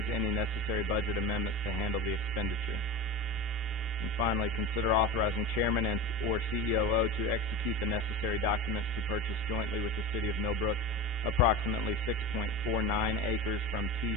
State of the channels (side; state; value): both; normal; correlation 0.27